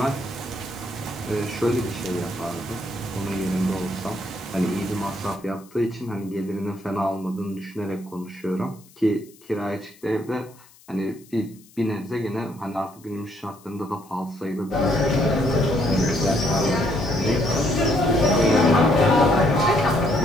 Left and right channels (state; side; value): noise; left; hiss, 26 dB below the sound